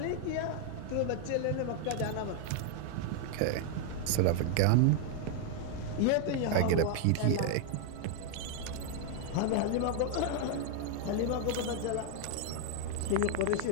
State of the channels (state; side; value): different; both; correlation 0.00